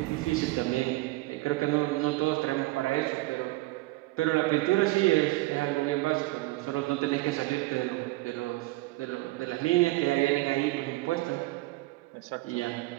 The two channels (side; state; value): left; quieter; 20.3 dB